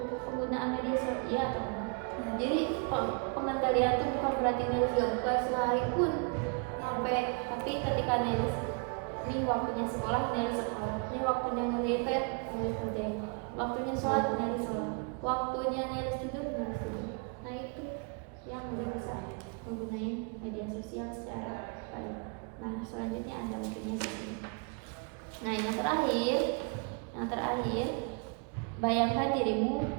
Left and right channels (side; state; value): left; quieter; 36.1 dB